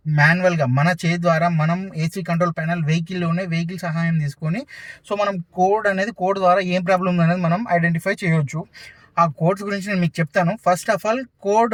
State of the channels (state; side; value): identical; both; correlation 1.00